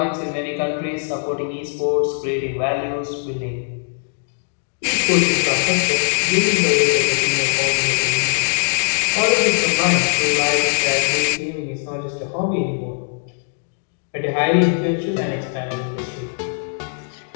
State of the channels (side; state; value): right; silent; digital silence